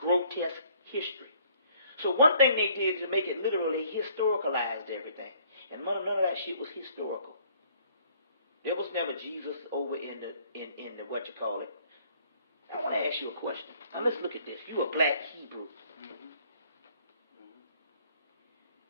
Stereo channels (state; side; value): inverted; both; correlation -0.60